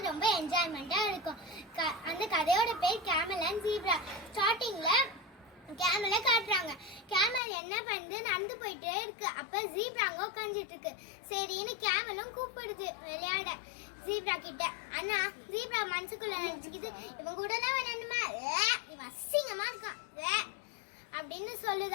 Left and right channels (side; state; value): right; drops out; at 7.4 s